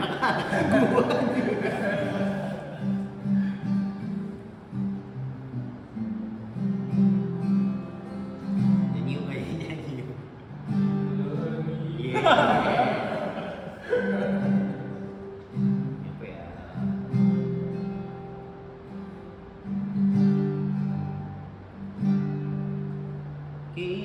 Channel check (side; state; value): both; identical; correlation 1.00